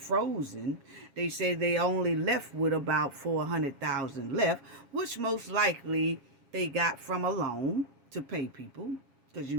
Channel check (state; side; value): late; left; 7.2 ms